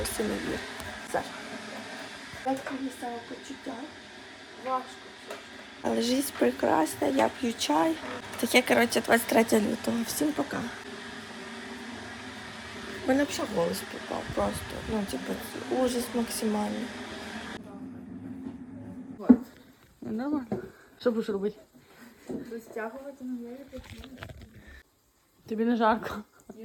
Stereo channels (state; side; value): identical; both; correlation 1.00